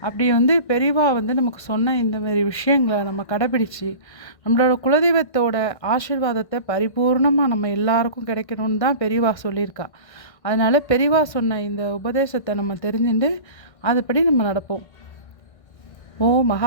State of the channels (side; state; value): right; late; 1.6 ms